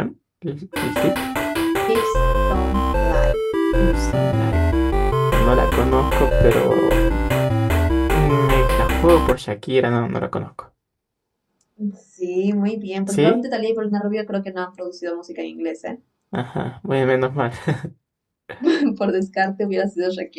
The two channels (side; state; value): both; identical; correlation 1.00